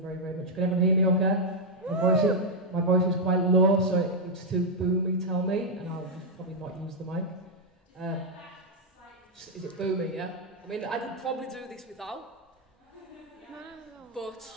very, very much. Can everyone hear me okay? My voice is quite low, so if it's too boomy, tell me, and I'll probably not use the mic. Is it boomy, yeah? I mean, I could probably do this without, but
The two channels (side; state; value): both; normal; correlation -0.02